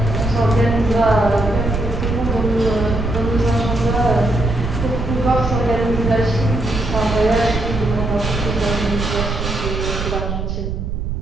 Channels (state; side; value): noise; right; rumble, 4 dB below the sound